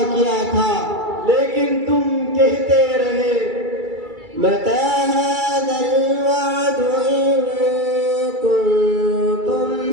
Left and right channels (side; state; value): left; late; 2.3 ms